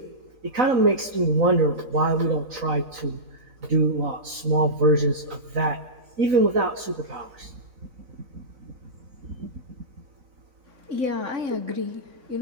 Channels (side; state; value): left; late; 3.9 ms